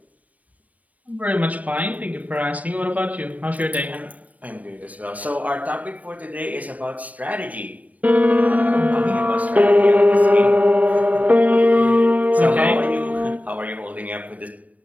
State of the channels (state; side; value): late; left; 0.072 ms